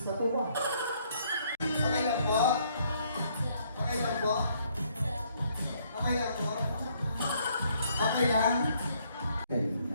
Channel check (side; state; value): both; inverted; correlation -0.68